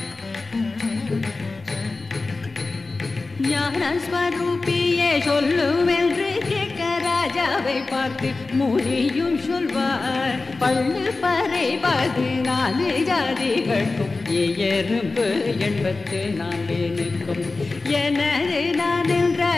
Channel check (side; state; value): right; quieter; 3.6 dB